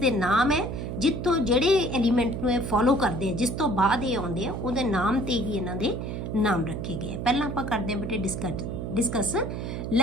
ਨਾਮ ਹੈ ਜਿੱਥੋਂ ਜਿਹੜੇ ਐਲੀਮੈਂਟ ਨੂੰ ਇਹ ਫੋਲੋ ਕਰਦੇ ਆ, ਜਿਸ ਤੋਂ ਬਾਅਦ ਇਹ ਆਉਂਦੇ ਆ, ਉਹਦੇ ਨਾਮ ਤੇ ਹੀ ਇਹਨਾਂ ਦੇ ਨਾਮ ਰੱਖੇ ਗਏ। ਪਹਿਲਾਂ ਆਪਾਂ ਕਰਦੇ ਹਾਂ ਬੇਟੇ discuss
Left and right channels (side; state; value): right; noise; hum, 5 dB below the sound